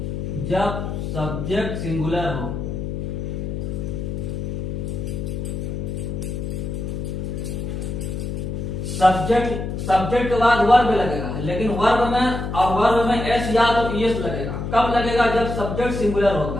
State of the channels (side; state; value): left; noise; hum, 4 dB below the sound